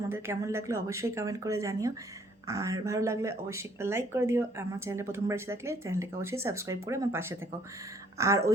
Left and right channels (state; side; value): normal; both; correlation 0.62